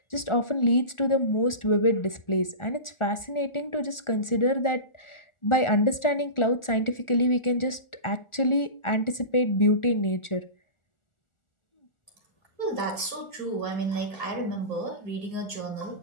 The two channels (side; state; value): right; late; 1.4 ms